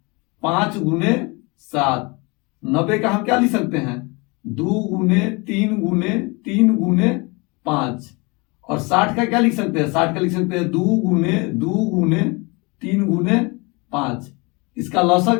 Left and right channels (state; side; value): quieter; right; 27.9 dB